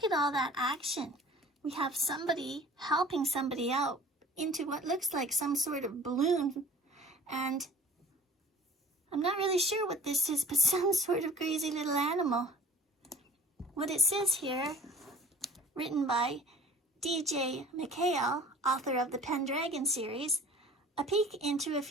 at all that action. We have somebody helping somebody out into what looks like some sort of balloon, and I'm not really sure what this is, but some sort of crazy little animal. What it says here, written by D.J. McHale, author of the Pendragon series, a peek into a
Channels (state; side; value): normal; both; correlation 0.46